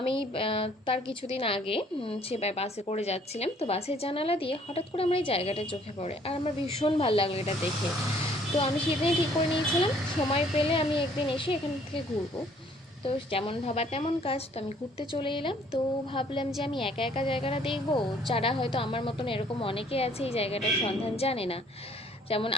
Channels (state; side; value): normal; both; correlation 0.60